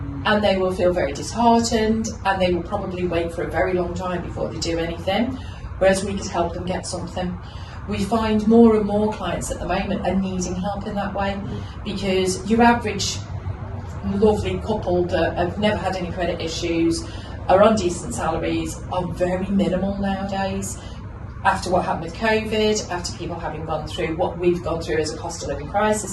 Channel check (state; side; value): identical; both; correlation 1.00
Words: And they will feel very disheartened, and they will probably wait for a very long time before they do anything, whereas we could help them get something. We find more and more clients at the moment are needing help in that way, because your average lovely couple that have never had any credit issues, are on decent salaries, are very minimal nowadays. After what happened with COVID, after people having gone through what we've gone through as a cost of living